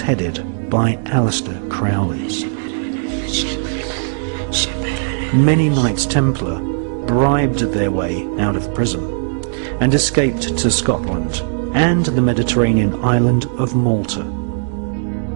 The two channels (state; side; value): silent; left; digital silence